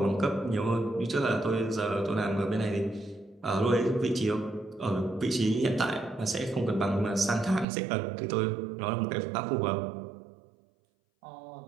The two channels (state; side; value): drops out; left; at 7.7 s